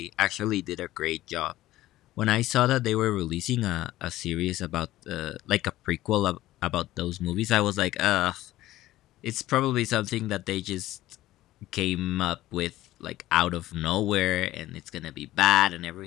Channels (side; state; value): right; quieter; 15.6 dB